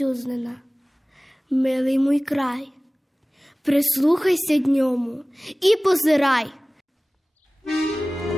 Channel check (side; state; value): both; normal; correlation 0.98